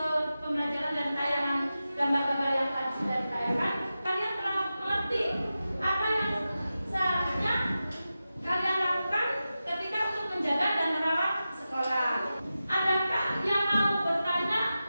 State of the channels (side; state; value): both; inverted; correlation -0.93